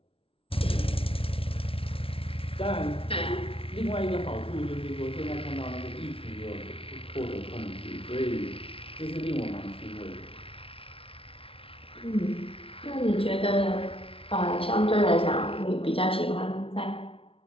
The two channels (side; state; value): right; late; 0.26 ms